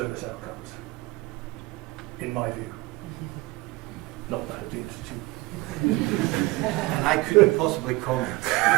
outcomes, in my view. Not that it needs to. And I couldn't possibly comment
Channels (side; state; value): left; quieter; 21.1 dB